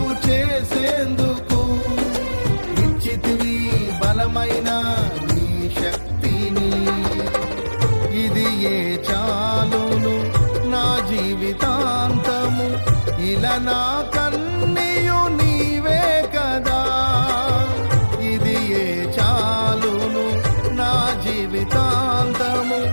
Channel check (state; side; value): inverted; both; correlation -1.00